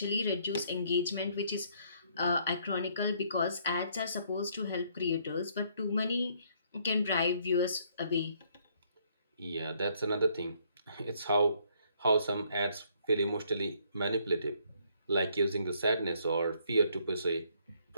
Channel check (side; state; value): both; inverted; correlation -0.67